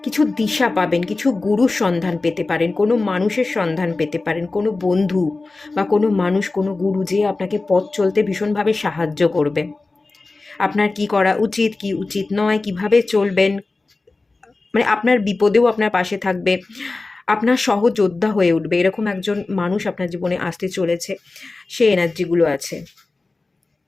কিছু দিশা পাবেন, কিছু গুরুর সন্ধান পেতে পারেন, কোনো মানুষের সন্ধান পেতে পারেন, কোনো বন্ধু বা কোনো মানুষ, কোনো গুরু যে আপনাকে পথ চলতে ভীষণভাবে সাহায্য করবে। আপনার কি করা উচিত, কি উচিত নয়, কিভাবে চলবেন, মানে আপনার বিপদেও আপনার পাশে থাকবে, আপনার সহযোদ্ধা হয়ে উঠবে, এরকম একজন মানুষ আপনার জীবনে আসতে চলেছে, সেই এনার্জিগুলো আছে।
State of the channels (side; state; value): right; quieter; 3.5 dB